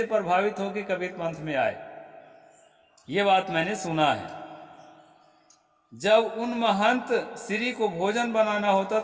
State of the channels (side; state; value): both; identical; correlation 1.00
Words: प्रभावित होकर कबीर पंथ में आए। ये बात मैंने सुना है। जब उन महंत श्री को भोजन बनाना होता